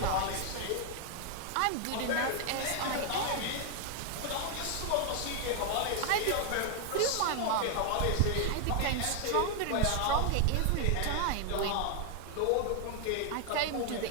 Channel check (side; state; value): both; different; correlation 0.00